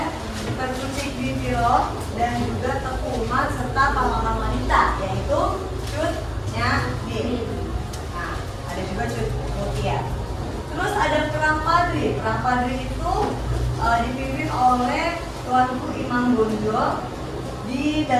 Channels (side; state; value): both; identical; correlation 1.00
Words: Perkucik Ditiro dan juga Teku Umar serta pahlawan wanita yaitu Cut Nyadim. Nah, ada juga Cut Mutia. Terus ada Perang Padri. Perang Padri itu dipimpin oleh Tuanku Imam Bonjol di